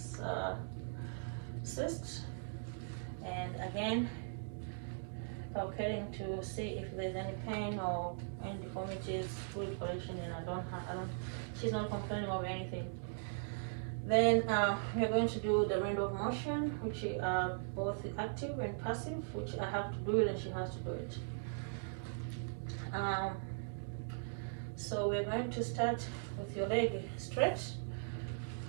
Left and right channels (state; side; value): silent; left; digital silence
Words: cyst. And again, palpating to see if there's any pain or any deformities, fluid collection, and she's not complaining of anything. Then we're going to do the range of motion, which are both active and passive, which I have to do it and she has to do it. So we're going to start with your leg stretch,